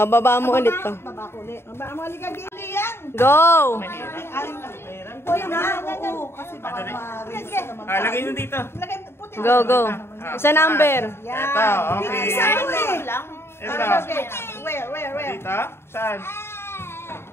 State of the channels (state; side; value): late; right; 0.12 ms